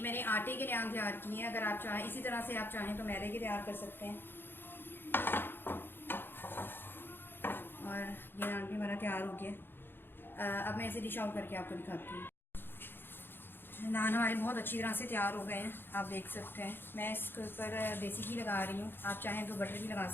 मैंने आटे के नान तैयार किए हैं, अगर आप चाहें इसी तरह से आप चाहें तो मैदे के तैयार कर सकते हैं। और ये नान भी हमारा तैयार हो गया। अब मैं इसे डिश आउट करके आपको दिखाती हूँ। नान हमारे बहुत अच्छी तरह से तैयार हो गए हैं, आप देख सकते हैं। मैं इसके ऊपर देसी घी लगा रही हूँ, आप चाहें तो बटर भी लगा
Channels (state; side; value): late; right; 0.10 ms